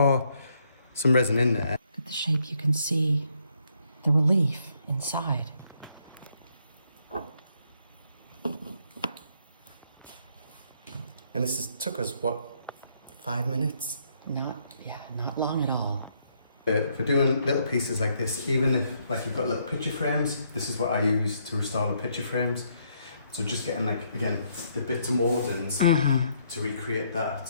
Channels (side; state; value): both; inverted; correlation -0.72